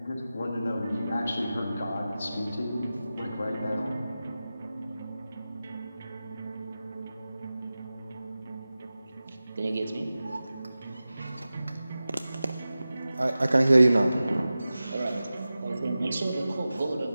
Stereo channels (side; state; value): both; inverted; correlation -0.95